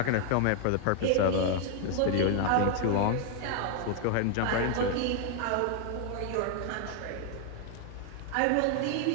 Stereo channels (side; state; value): both; different; correlation 0.00